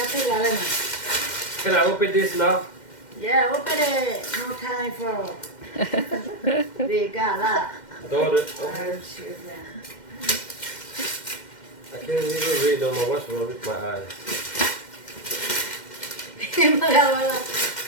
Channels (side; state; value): right; late; 2.1 ms